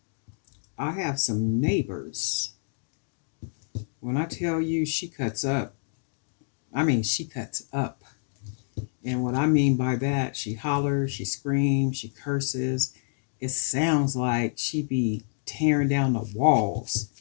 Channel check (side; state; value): right; silent; digital silence